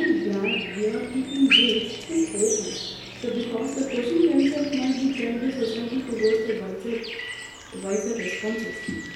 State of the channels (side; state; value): both; identical; correlation 1.00